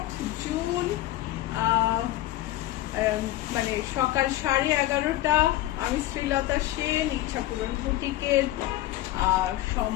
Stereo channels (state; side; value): quieter; right; 15.3 dB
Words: জুন, মানে সকাল 11:30। আমি শ্রীলতা সেন ইচ্ছাপূরণ বুটিকের